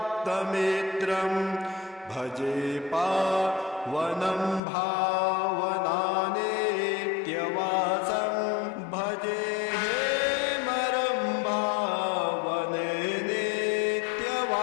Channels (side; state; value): right; drops out; at 4.6 s